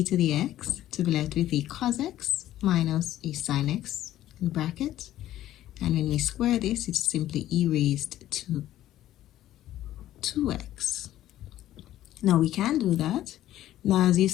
to the x, to be left with a cos x minus a sin x in bracket. And when we square this, it's simply e raised to 2x. Now we can do that. Now as you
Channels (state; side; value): quieter; right; 13.4 dB